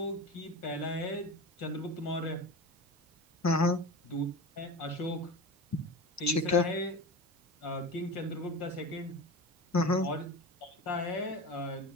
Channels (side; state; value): both; normal; correlation 0.29